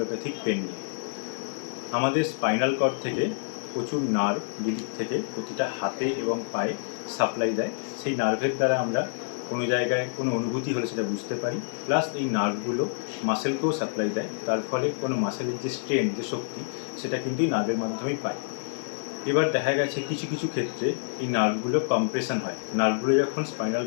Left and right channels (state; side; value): silent; right; digital silence